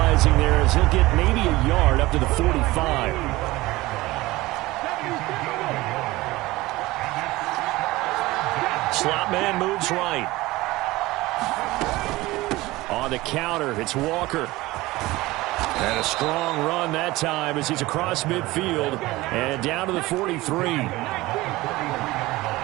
there as he'll get maybe a yard up to the 45. Slot man moves right. On the counter, it's Walker. And a strong run that time as he's across midfield and down to the 43.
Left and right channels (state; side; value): quieter; left; 19.4 dB